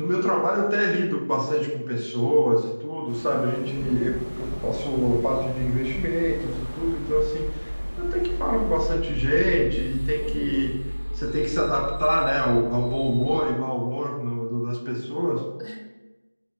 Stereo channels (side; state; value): both; inverted; correlation -1.00